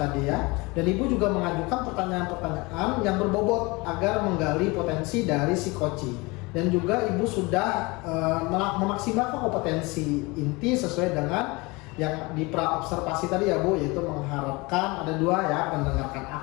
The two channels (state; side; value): quieter; right; 25.1 dB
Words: ya. Dan Ibu juga mengajukan pertanyaan-pertanyaan yang berbobot agar menggali potensi dari si coachee. Dan juga Ibu sudah memaksimalkan kompetensi inti sesuai dengan yang di pra observasi tadi ya Bu, yaitu mengharapkan ada dua ya, mendengarkan